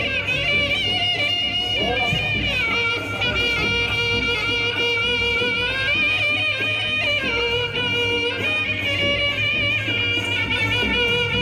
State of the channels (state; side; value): identical; both; correlation 1.00